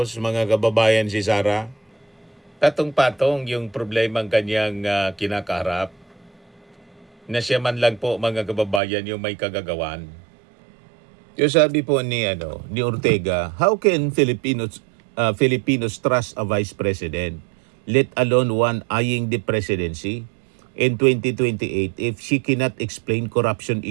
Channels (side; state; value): left; drops out; at 8.8 s